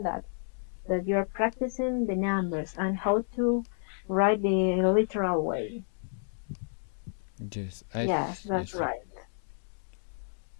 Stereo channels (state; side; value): silent; right; digital silence